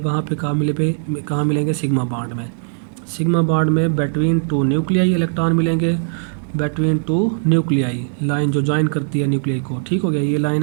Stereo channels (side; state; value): left; silent; digital silence